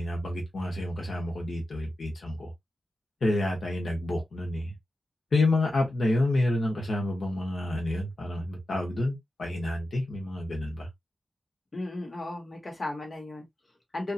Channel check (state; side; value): normal; both; correlation 0.91